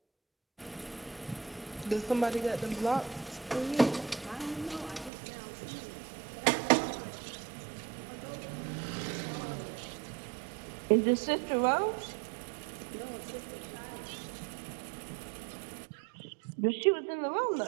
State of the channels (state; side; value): drops out; left; at 5.1 s